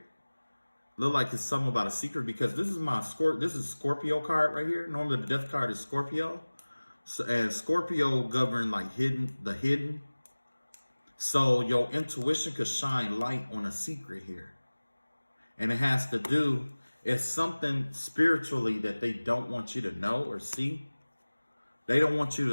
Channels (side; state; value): both; inverted; correlation -1.00